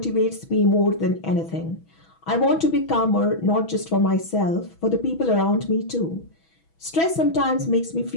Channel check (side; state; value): right; late; 6.1 ms